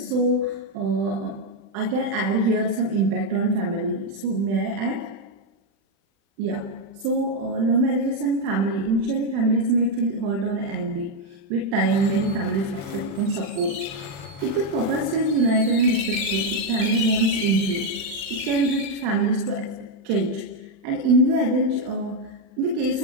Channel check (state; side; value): late; left; 35 ms